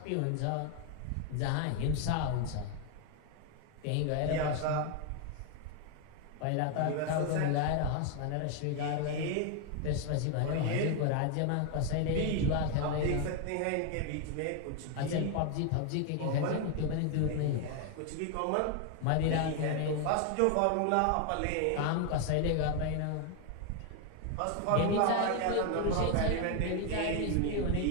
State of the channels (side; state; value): both; different; correlation 0.01